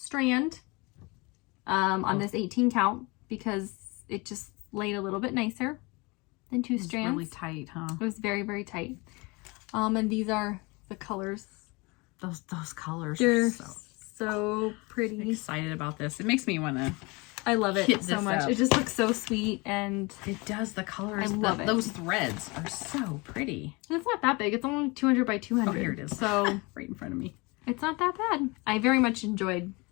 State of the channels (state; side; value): quieter; right; 26.4 dB